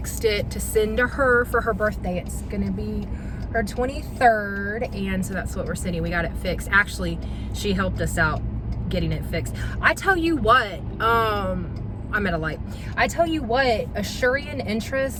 it to send to her for her birthday. It's gonna be her 23rd, and so that's what we're sending. We got it fixed. Actually, she helped us out getting it fixed. I tell you what, I'm at a light. I tell you what, Asurian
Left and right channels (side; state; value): both; identical; correlation 1.00